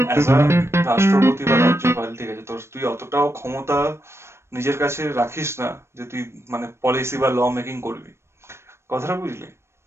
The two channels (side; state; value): left; late; 0.13 ms